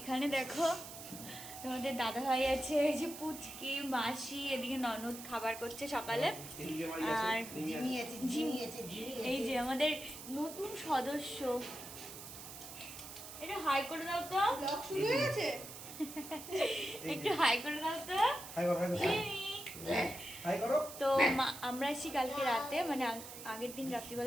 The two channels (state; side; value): noise; right; hiss, 12 dB below the sound